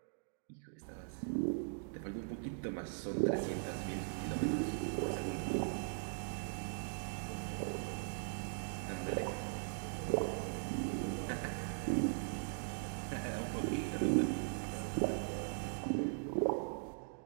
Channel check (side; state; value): left; silent; digital silence